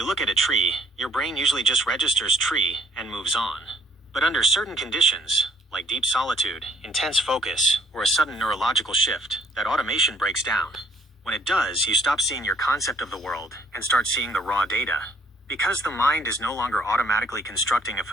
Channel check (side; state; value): both; normal; correlation 0.63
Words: look at a tree, your brain usually just registers tree and moves on. But under certain conditions, like deep solitude, intense focus, or a sudden neurological shift, that automation breaks down. When it does, you stop seeing your concept of the world and start seeing the raw data. Because the mind is no longer automatically constructing a